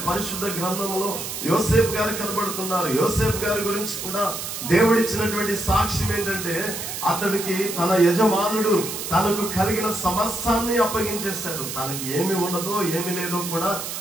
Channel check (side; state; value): right; noise; hiss, 6 dB below the sound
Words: పరిశుద్ధ గ్రంథంలో యోసేపు గారు కనబడుతున్నారు. యోసేపు గారి గురించి కూడా దేవుడిచ్చినటువంటి సాక్ష్యం ఏంటంటే అతడికి తన యజమానుడు తనకు కలిగిన సమస్తాన్ని అప్పగించేశాడు. తనకి ఏమి ఉన్నదో ఏమి లేదో కూడా